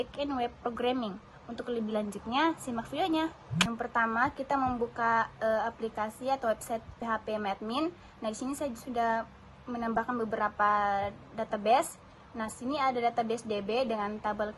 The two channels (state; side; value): identical; both; correlation 1.00